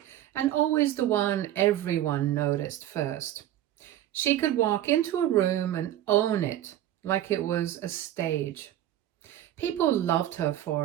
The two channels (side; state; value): left; quieter; 12.5 dB